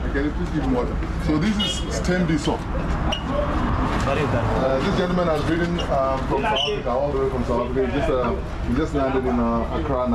Can you please give him water? So this is Stembiso. This gentleman has ridden from South Africa, all the way from South Africa. He just landed in Accra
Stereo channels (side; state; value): both; identical; correlation 1.00